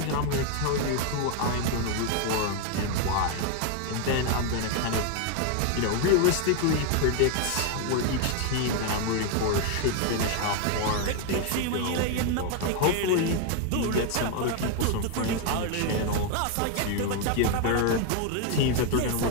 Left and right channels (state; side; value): different; both; correlation 0.01